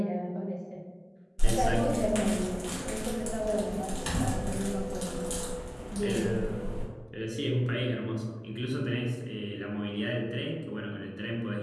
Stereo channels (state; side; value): identical; both; correlation 1.00